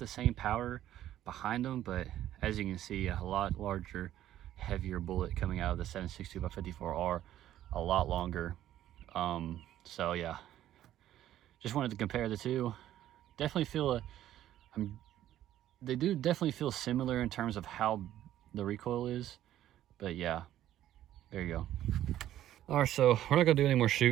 same power behind them, but as you can see, a lot larger, heavier bullet coming out of the 762 by 54R, a lot longer. So yeah, just wanted to compare the two. Definitely feel they do definitely feel similar in terms of how the recoil is, but yeah, there you go. All right, so we're not gonna do any more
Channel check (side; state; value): left; quieter; 12.6 dB